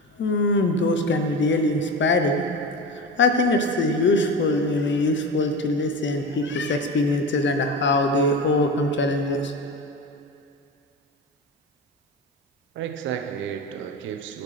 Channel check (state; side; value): normal; both; correlation 0.26